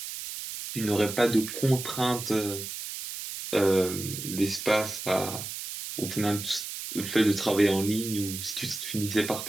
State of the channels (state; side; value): noise; right; hiss, 8 dB below the sound